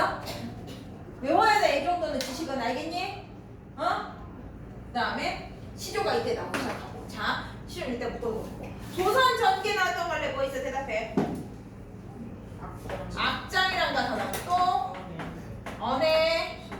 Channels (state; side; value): identical; both; correlation 1.00